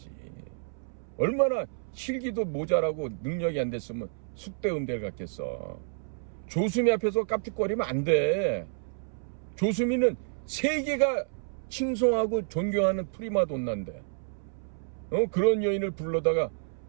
얼마나 실기도 모자라고 능력이 안 됐으면 숙대 음대를 갔겠어. 조수미 앞에서 깝죽거리면 안 돼. 조수미는 세계가 칭송하고 존경하는 프리마돈나인데 그런 여인을 불러다가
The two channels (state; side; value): silent; left; 58 dB below the other